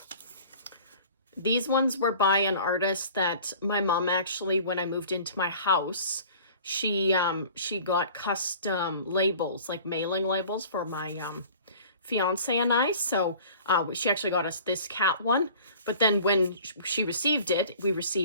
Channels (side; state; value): both; inverted; correlation -0.46